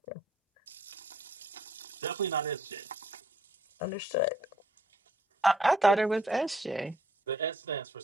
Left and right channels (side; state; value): both; normal; correlation 0.65